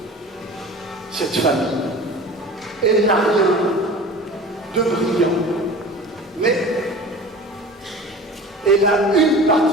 cette famille. Elle n'a rien de brillant, mais elle a une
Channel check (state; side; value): normal; both; correlation 0.38